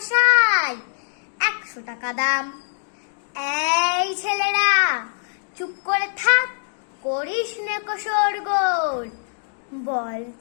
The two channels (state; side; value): silent; right; digital silence